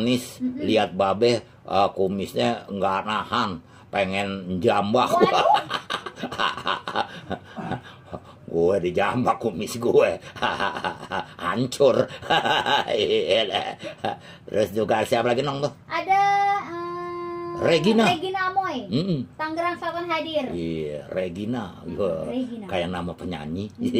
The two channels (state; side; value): identical; both; correlation 1.00